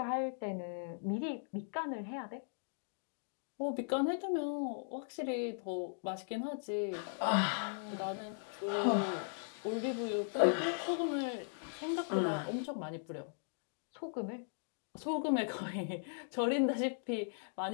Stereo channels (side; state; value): right; silent; digital silence